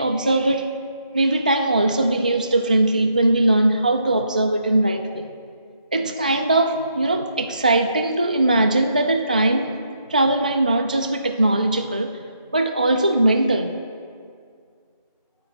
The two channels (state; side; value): inverted; both; correlation -0.76